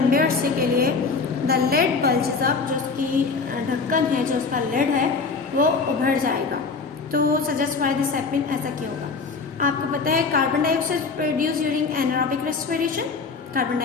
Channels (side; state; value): right; quieter; 4.6 dB